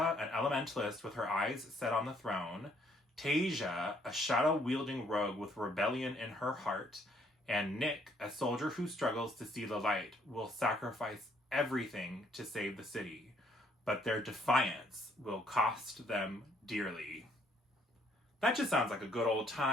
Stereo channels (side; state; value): both; normal; correlation 0.66